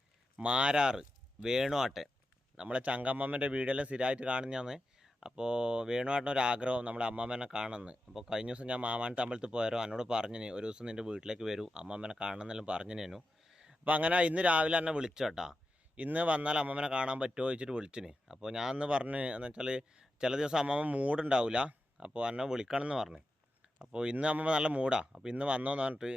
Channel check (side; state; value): both; normal; correlation 0.90